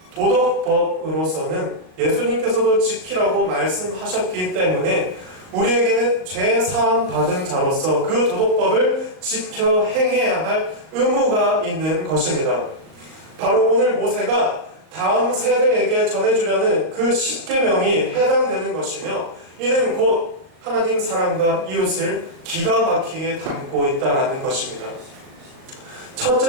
도덕법으로서는 예수님께서도 지키라고 말씀하셨기 때문에 우리에게는 죄 사함 받은 자로서 그 도덕법을 지켜 행해야 할 의무가 있는 것입니다. 바로 오늘 모세가 다음 세대에게 전해주려는 그 십계명이 해당되는 것이며 이는 곧 하나님 사랑과 이웃을 기가 막히게 담고 있다라는 것입니다.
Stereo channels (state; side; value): late; left; 38 ms